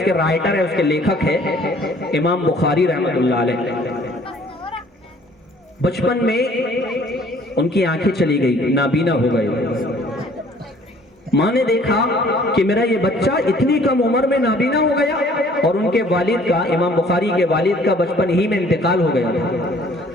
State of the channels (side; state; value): both; normal; correlation 0.56